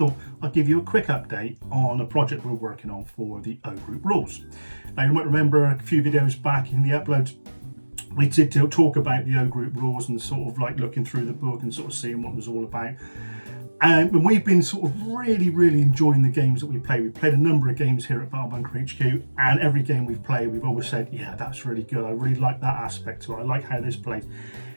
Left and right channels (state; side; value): inverted; both; correlation -1.00